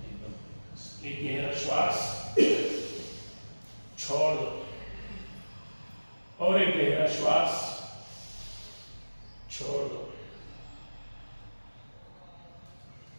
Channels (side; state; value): both; inverted; correlation -1.00